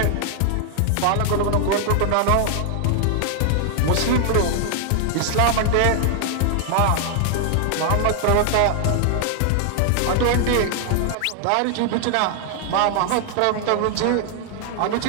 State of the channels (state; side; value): different; both; correlation 0.00